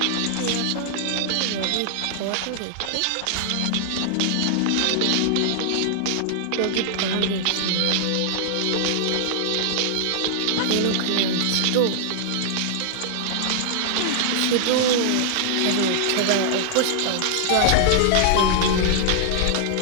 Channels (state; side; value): different; both; correlation -0.01